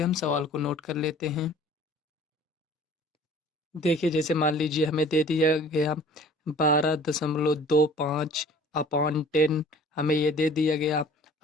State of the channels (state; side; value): normal; both; correlation 0.49